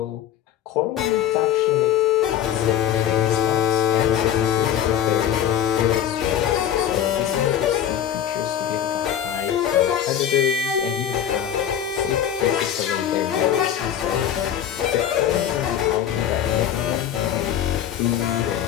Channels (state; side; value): quieter; right; 10.1 dB